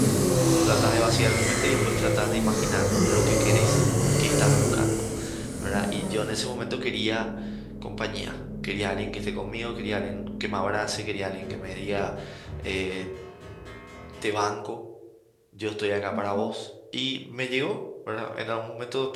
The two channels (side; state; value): both; identical; correlation 1.00